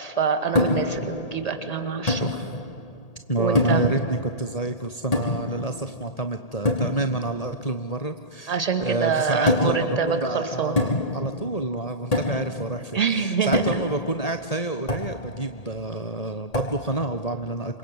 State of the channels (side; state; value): right; late; 1.8 ms